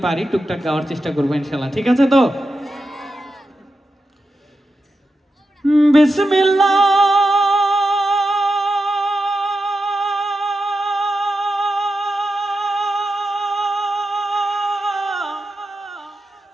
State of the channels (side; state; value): both; normal; correlation 0.89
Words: পারি টুকটাক গাওয়ার চেষ্টা করবো ইনশাআল্লাহ, ঠিক আছে? তো বিসমিল্লাহ